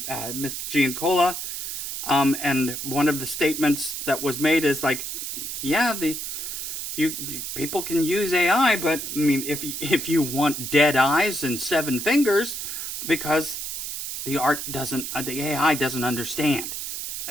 Giancola, and one of the statements that was made is like, yeah, people can use AI, but I mean, if you want dead eyes and 7 fingers, because the AI doesn't understand.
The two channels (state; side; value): noise; right; hiss, 5 dB below the sound